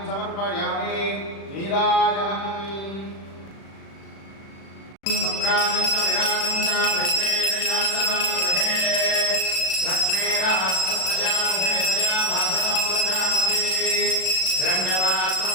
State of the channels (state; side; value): late; right; 36 ms